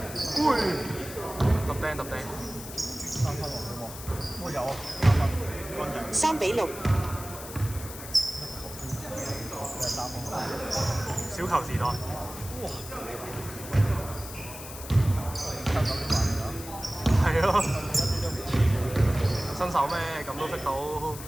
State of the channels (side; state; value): left; noise; hiss, 12 dB below the sound